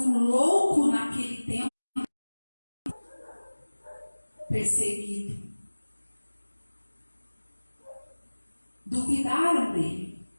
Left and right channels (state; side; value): inverted; both; correlation -1.00